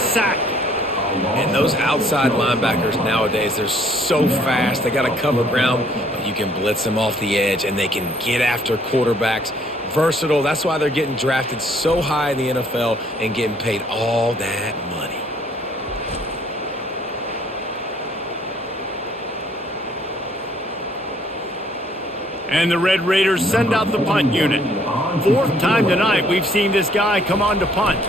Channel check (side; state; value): both; normal; correlation 0.62